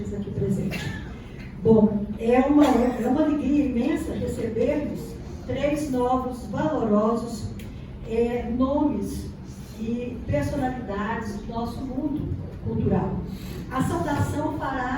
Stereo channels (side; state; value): both; identical; correlation 1.00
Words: aqui presentes. Bom, é uma alegria imensa recebermos 3 novos, valorosos nomes e personalidades do nosso mundo cultural. A saudação